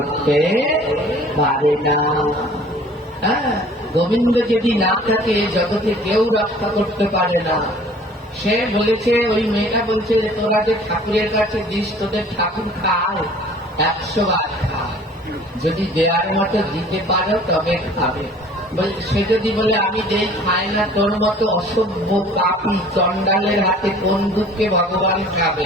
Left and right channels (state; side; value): normal; both; correlation 0.50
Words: পারে না। হ্যাঁ, গোবিন্দ যদি না থাকে জগতে কেউ রক্ষা করতে পারে না। সে বলেছে, ওই মেয়েটা বলছে, তোরা যে ঠাকুরের কাছে দিস, তোদের ঠাকুর খায় 100 বার খায়, যদি দেওয়ার মতো দিতে পারো তবে খাবে। সে যদি বলে আমি দেই, খায় না, তোর মতো অসভ্য পাপী চণ্ডালের হাতে কোন দুঃখে ভগবান